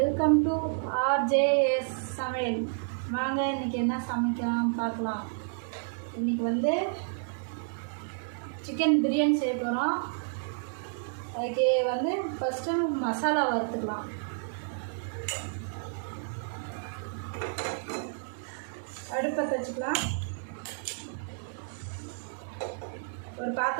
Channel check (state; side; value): silent; left; 57 dB below the other